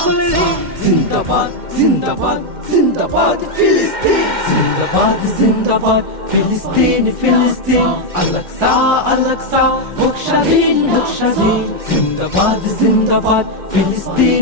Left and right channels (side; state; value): left; late; 2.1 ms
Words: ঋণ জিন্দাবাদ জিন্দাবাদ জিন্দাবাদ ফিলিস্তিন জিন্দাবাদ জিন্দাবাদ ফিলিস্তিন ফিলিস্তিন আল-আকসা আল-আকসা বুকস্বাধীন বুকস্বাধীন জিন্দাবাদ জিন্দাবাদ